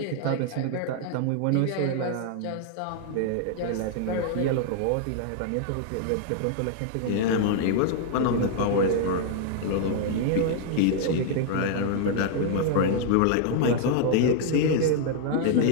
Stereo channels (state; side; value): different; both; correlation -0.01